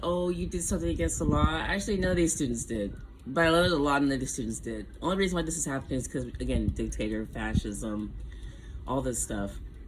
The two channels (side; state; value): both; identical; correlation 1.00